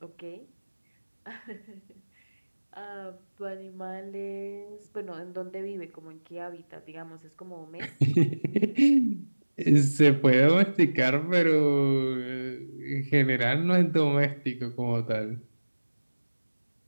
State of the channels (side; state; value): both; inverted; correlation -1.00